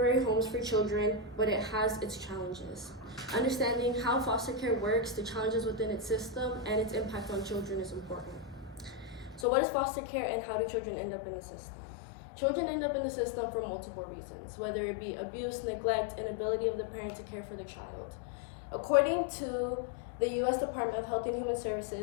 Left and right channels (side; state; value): right; drops out; at 9.5 s